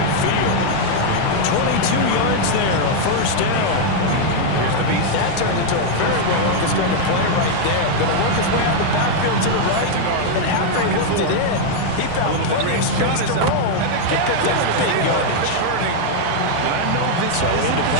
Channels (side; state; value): both; different; correlation 0.00